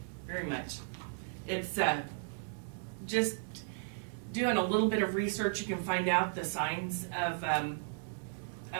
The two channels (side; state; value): left; silent; digital silence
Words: very much. It's just doing a little bit of research. You can find out the signs of